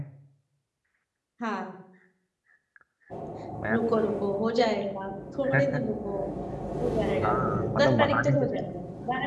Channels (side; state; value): both; identical; correlation 1.00